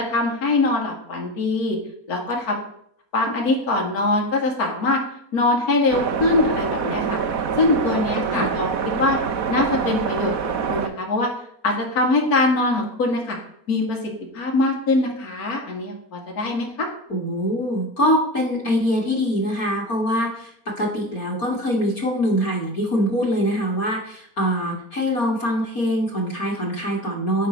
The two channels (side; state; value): right; late; 4.2 ms